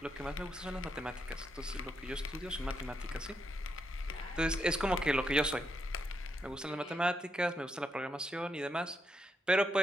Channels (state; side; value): normal; both; correlation 0.80